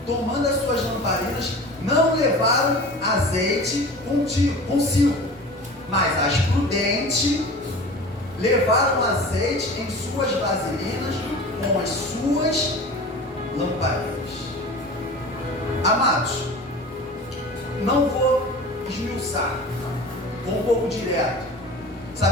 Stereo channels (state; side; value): normal; both; correlation 0.37